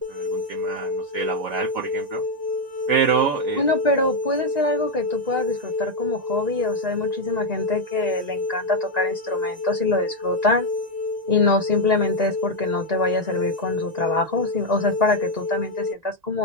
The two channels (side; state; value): left; late; 1.9 ms